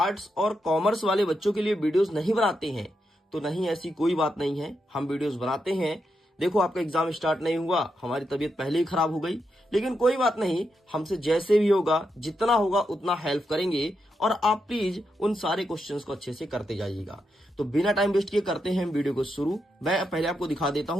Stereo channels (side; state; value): both; normal; correlation 0.84